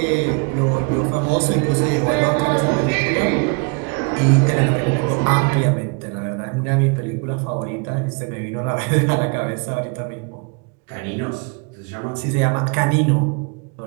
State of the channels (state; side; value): quieter; left; 32.8 dB